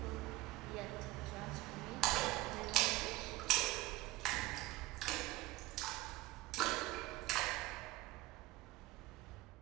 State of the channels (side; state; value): left; quieter; 18.6 dB